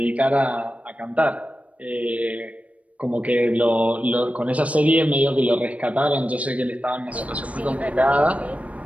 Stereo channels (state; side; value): late; left; 0.066 ms